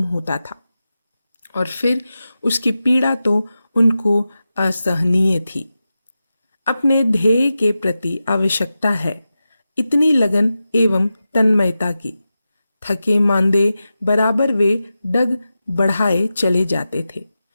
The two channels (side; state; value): both; inverted; correlation -0.92